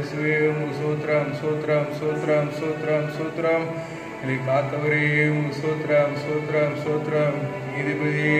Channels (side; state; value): both; identical; correlation 1.00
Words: உமக்கு சூத்ரம் சூத்ரம் சூத்ரம் சூத்ரம் சூத்ரம் எங்களை காத்தவரே உமக்கு சூத்ரம் சூத்ரம் சூத்ரம் நீதிபதியே